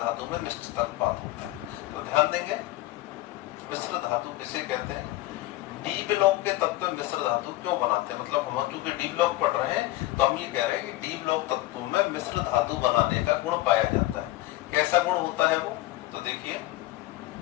में निश्चित अनुपात होता है। तो ध्यान देंगे, मिश्र धातु किसे कहते हैं, डी ब्लॉक के तत्व मिश्र धातु क्यों बनाते हैं, मतलब हम चूंकि डी ब्लॉक पढ़ रहे हैं तो हम ये कह रहे हैं कि डी ब्लॉक तत्वों में मिश्र धातु बनाने का गुण पाया जाता है। कैसा गुण होता है वो, तो देखिए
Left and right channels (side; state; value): right; quieter; 17.3 dB